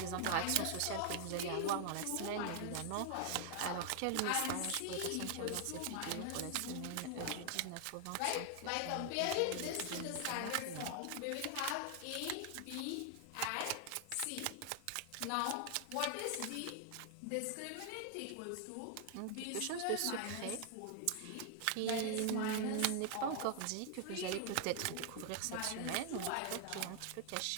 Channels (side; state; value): both; different; correlation 0.00